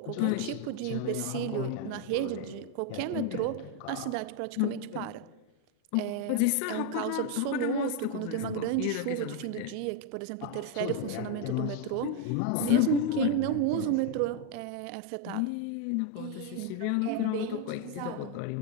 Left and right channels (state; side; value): different; both; correlation 0.01